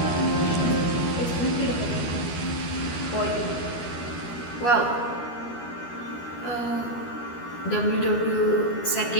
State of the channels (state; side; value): late; right; 12 ms